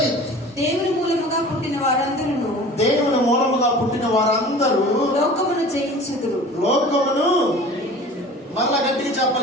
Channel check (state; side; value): normal; both; correlation 0.42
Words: దేవుని మూలముగా పుట్టిన వారందరూ, దేవుని మూలముగా పుట్టిన వారందరూ లోకమును జయించుదురు. లోకమును మళ్ళా గట్టిగా